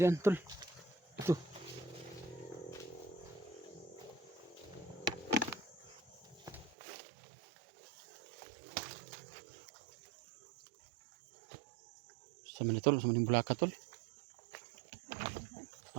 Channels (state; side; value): drops out; left; at 6.8 s